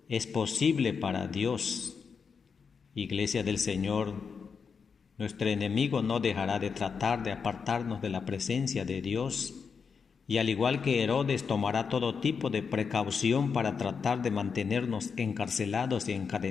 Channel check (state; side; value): quieter; right; 5.9 dB